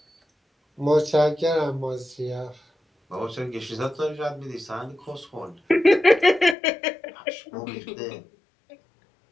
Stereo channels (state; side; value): drops out; right; at 6.6 s